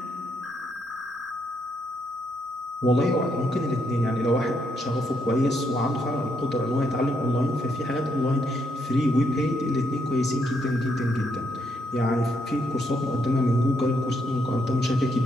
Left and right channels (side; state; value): both; normal; correlation 0.76